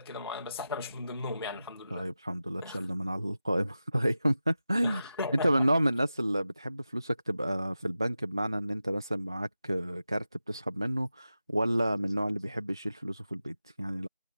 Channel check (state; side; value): inverted; both; correlation -0.92